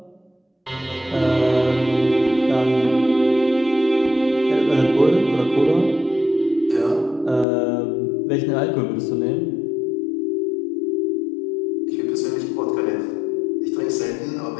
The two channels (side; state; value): right; drops out; at 7.5 s